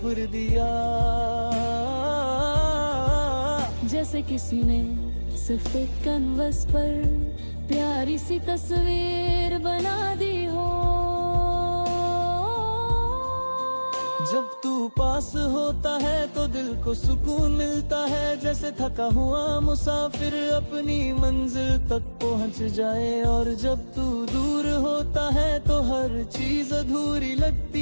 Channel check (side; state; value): both; inverted; correlation -1.00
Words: दिया, जैसे किसी ने सिर्फ एक कैनवस पर प्यारी सी तस्वीर बना दी हो। जब तू पास होता है तो दिल को सुकून मिलता है, जैसे थका हुआ मुसाफिर अपनी मंजिल तक पहुंच जाए। और जब तू दूर होता है तो हर चीज अधूरी